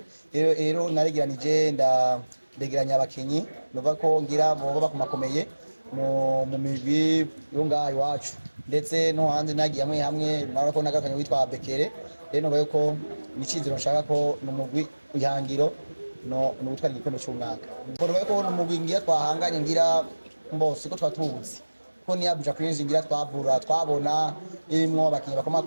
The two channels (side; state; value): both; inverted; correlation -1.00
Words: rero naregeranije ndegeranya abakinyi nubaye ko ngira boba bakumakomeye mu migwi yo ngaho iwacu ndetse no hanze nagiye hamwe nabona ko nagakanye witwa Bekere rero bayo ko nicizero nshaka ko numugwi ihangiro no gutwara igikombe cy'umwaka mbona bayo ko numugwi ngira twahanganye ngira mbose ko twatubuzi ko ni Abuja Queens ngira twabona imwo abakinyi